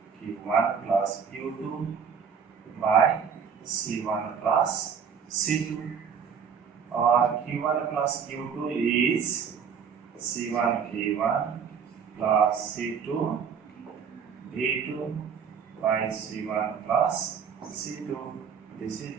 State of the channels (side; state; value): left; quieter; 6.8 dB